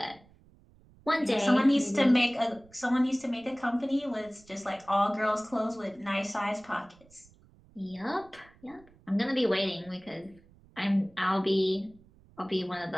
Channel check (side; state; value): right; noise; rumble, 27 dB below the sound